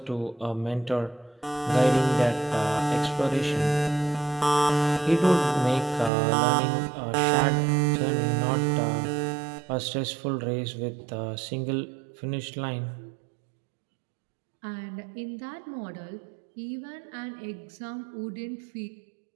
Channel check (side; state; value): left; drops out; at 6.1 s